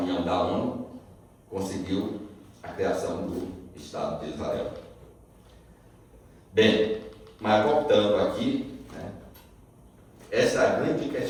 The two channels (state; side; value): identical; both; correlation 1.00